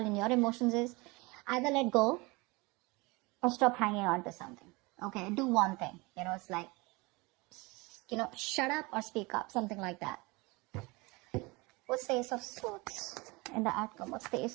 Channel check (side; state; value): left; quieter; 25.0 dB